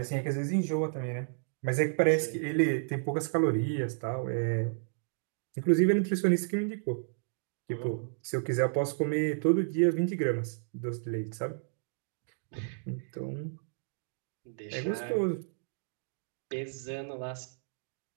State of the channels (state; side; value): silent; left; digital silence